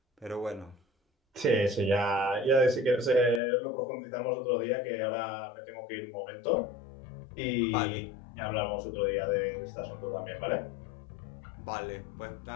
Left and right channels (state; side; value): drops out; right; at 3.4 s